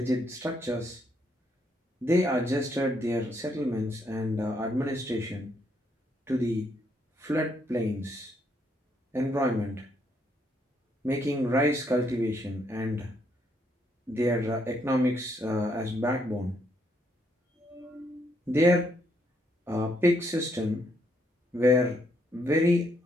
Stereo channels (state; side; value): normal; both; correlation 0.74